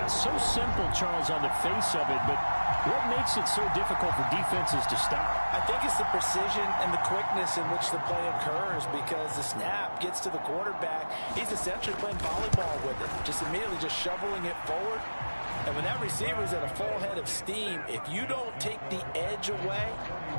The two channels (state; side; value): inverted; both; correlation -1.00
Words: so simple, Charles, on the face of it, but what makes it so difficult for defenses to stop? I think it's the precision and the quickness in which the play occurs, because the snap gets to the quarterback. He's essentially playing volleyball with it, just immediately just shoveling it forward. And when that receiver's at a full head of steam, if you don't take the edge away,